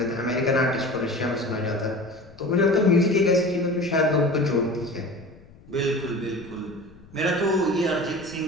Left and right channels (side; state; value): left; noise; rumble, 24 dB below the sound